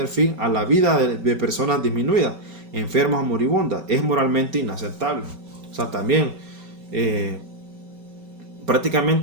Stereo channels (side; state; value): left; late; 5.3 ms